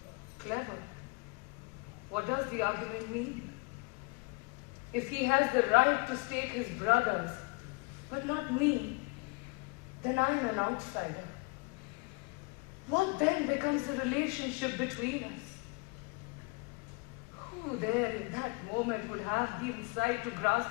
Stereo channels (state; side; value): quieter; right; 27.6 dB